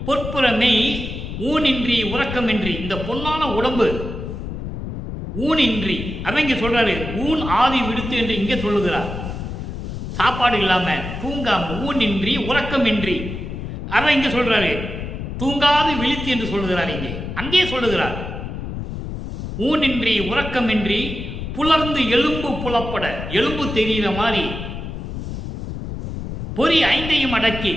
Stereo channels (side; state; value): left; noise; rumble, 7 dB below the sound